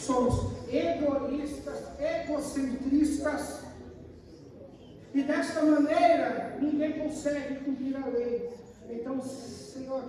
egoístas, egocentristas, e desta maneira ninguém consegue cumprir a lei. Então, Senhor,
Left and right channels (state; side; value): identical; both; correlation 1.00